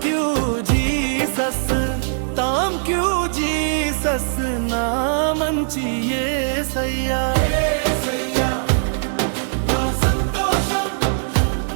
you Jesus thank you Jesus నా మంచి యేసయ్యా యేసయ్యా నా సంతోషం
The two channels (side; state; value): left; silent; digital silence